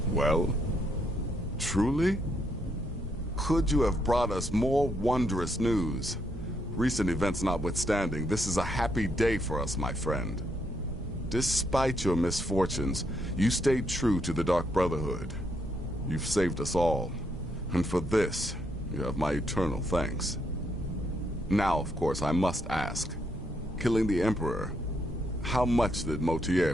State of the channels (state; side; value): normal; both; correlation 0.76